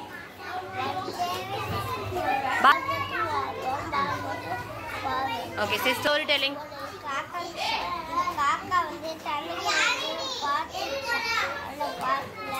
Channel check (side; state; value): both; identical; correlation 1.00